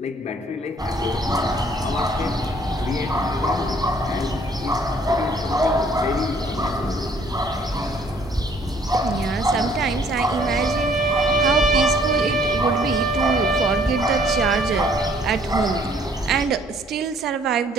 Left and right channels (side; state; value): both; normal; correlation 0.61